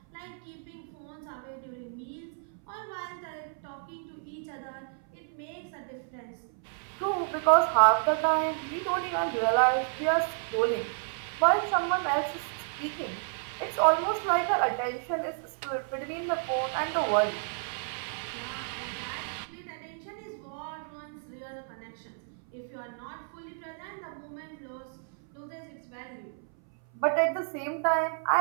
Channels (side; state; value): left; silent; 57 dB below the other